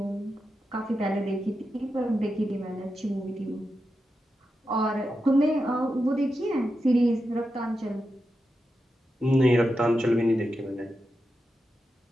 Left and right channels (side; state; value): both; normal; correlation 0.89